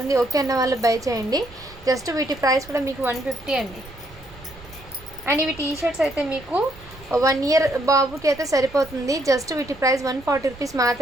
ఓకే అన్న వాళ్ళు బై చేయండి. జస్ట్ వీటి ప్రైస్ కూడా మీకు 150 అండి. అండ్ ఇవి టీ షర్ట్స్ అయితే మీకు 1 ఇయర్ బాబుకి అయితే సరిపోతుంది. జస్ట్ వీటి ప్రైస్ 140 రూపీస్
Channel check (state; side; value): noise; right; rumble, 20 dB below the sound